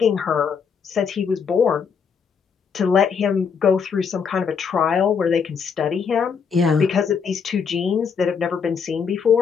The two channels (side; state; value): right; quieter; 6.3 dB